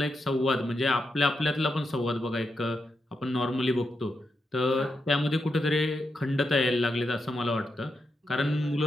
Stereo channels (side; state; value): both; normal; correlation 0.85